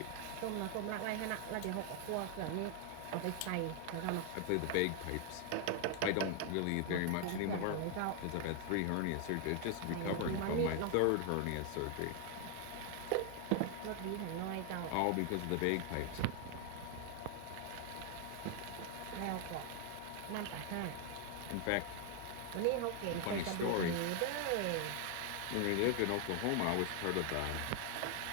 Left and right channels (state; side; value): different; both; correlation 0.00